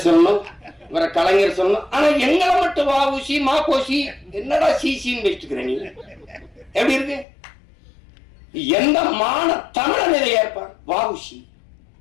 சொல்லணும், இவரை கலைஞர் சொல்லணும். ஆனா எங்களை மட்டும் வாவுசி மாப்போசி என்னடா சிசின்னு வச்சுக்கிறேன். நீ எப்படி இருக்கு? எந்த தமிழன் இதை ஏற்பான்? வாவுசி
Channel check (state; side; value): drops out; right; at 7.2 s